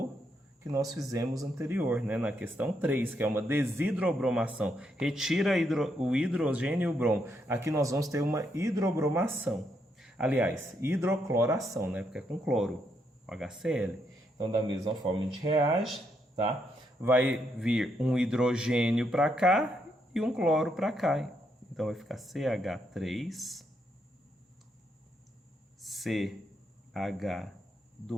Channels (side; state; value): both; normal; correlation 0.78